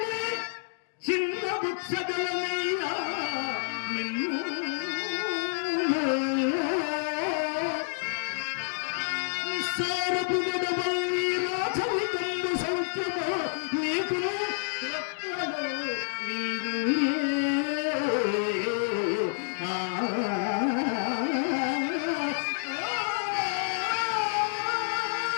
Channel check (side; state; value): right; silent; digital silence